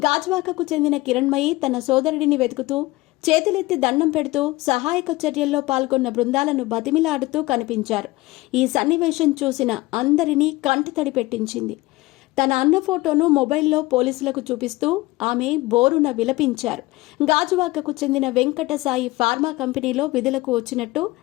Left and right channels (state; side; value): quieter; right; 20.2 dB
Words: గాజువాకకు చెందిన కిరణ్మయి తన సోదరుడిని వెతుకుతూ చేతులెత్తి దండం పెడుతూ సహాయక చర్యల్లో పాల్గొన్న బృందాలను బతిమిలాడుతూ కనిపించారు. ఈ సన్నివేశం చూసిన అందరినీ కంటతడి పెట్టించింది. తన అన్న ఫోటోను మొబైల్లో పోలీసులకు చూపిస్తూ ఆమె బోరున విలపించారు. గాజువాకకు చెందిన వెంకటసాయి ఫార్మా కంపెనీలో విధులకు వచ్చినట్టు